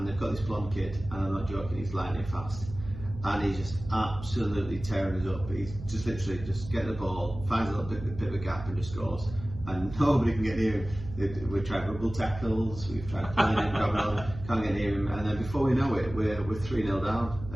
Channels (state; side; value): noise; right; hum, 11 dB below the sound